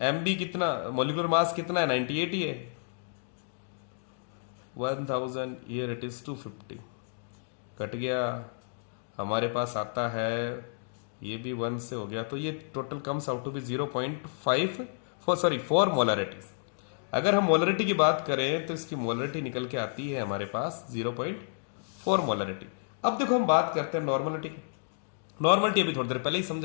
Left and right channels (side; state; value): right; silent; digital silence